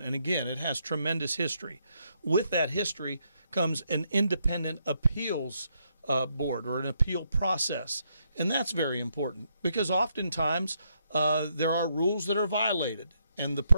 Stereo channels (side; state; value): both; inverted; correlation -0.76